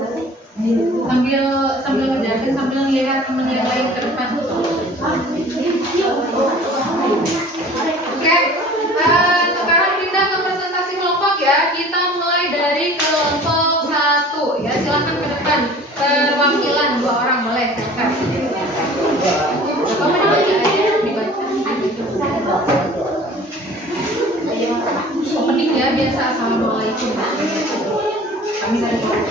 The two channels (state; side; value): normal; both; correlation 0.46